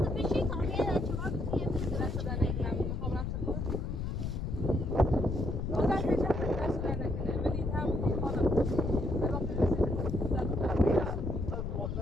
تو بشی تا که چهار بگی دست دادن نمیدونم میخوام رم سکر بازم پیشم دست دادن نکنه ولی هم خانم الان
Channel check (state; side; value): noise; left; rumble, 3 dB below the sound